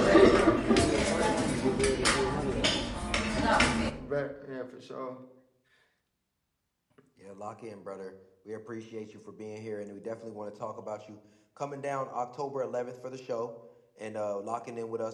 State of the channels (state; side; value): identical; both; correlation 1.00